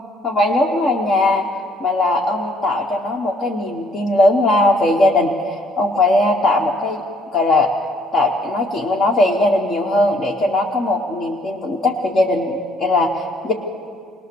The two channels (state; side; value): normal; both; correlation 0.64